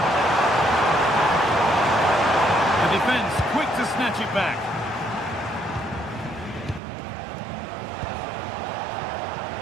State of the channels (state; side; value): drops out; left; at 6.8 s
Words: The defence quick to snatch it back.